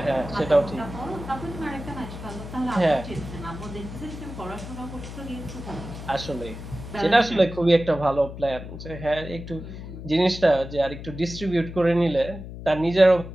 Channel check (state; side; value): noise; left; hum, 11 dB below the sound